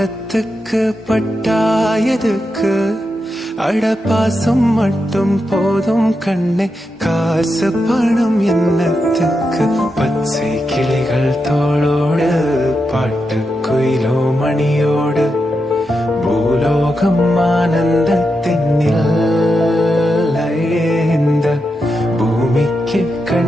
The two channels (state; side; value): normal; both; correlation 0.86